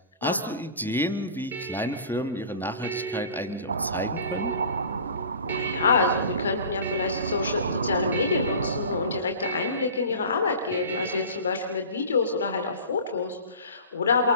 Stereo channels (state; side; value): inverted; both; correlation -0.40